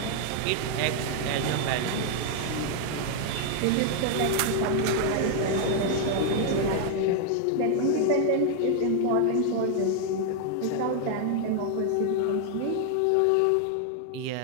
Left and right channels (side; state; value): both; different; correlation 0.00